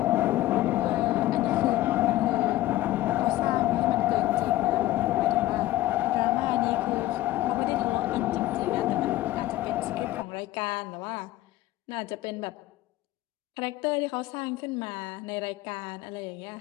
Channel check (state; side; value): quieter; right; 15.7 dB